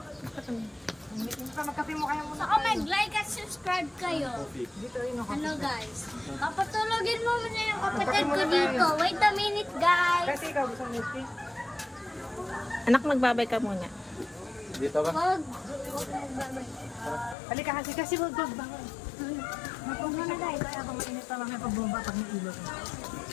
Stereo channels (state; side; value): drops out; right; at 17.4 s